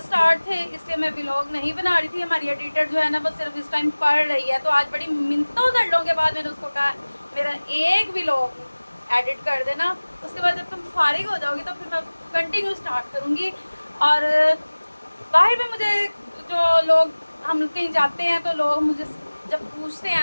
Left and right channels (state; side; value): inverted; both; correlation -1.00